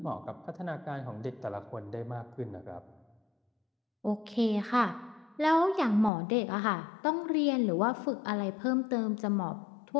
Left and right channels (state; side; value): drops out; right; at 6.1 s